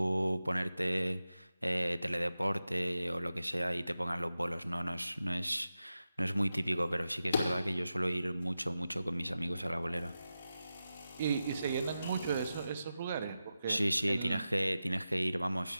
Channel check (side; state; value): both; inverted; correlation -0.92